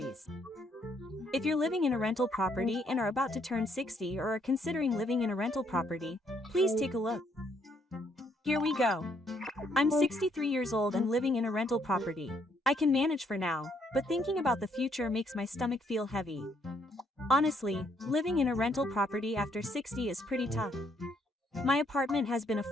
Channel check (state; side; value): normal; both; correlation 0.71